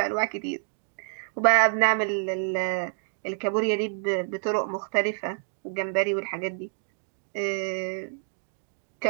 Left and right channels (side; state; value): left; silent; 60 dB below the other